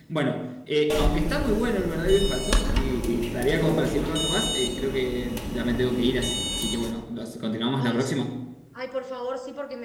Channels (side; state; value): both; identical; correlation 1.00